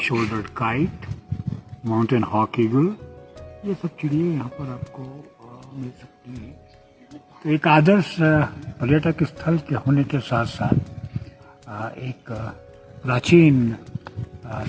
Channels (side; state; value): both; identical; correlation 1.00